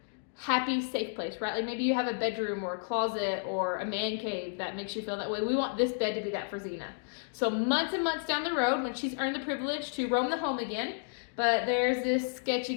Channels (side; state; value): right; silent; digital silence